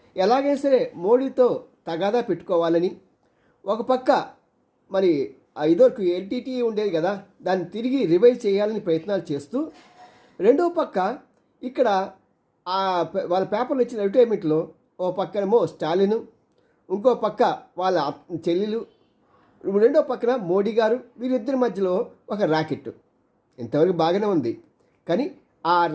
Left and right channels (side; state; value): both; identical; correlation 1.00